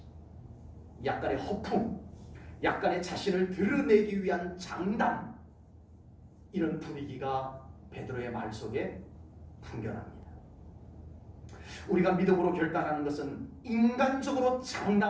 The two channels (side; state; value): both; identical; correlation 1.00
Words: 약간의 허풍, 약간의 자신을 드러내기 위한 장담, 이런 분위기가 베드로의 말 속에 풍겨납니다. 우리가 믿음으로 결단하는 것은 인간적으로